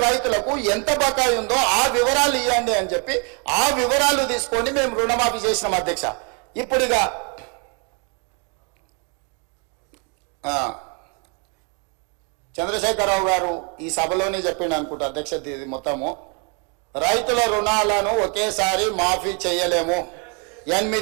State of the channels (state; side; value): quieter; left; 36.3 dB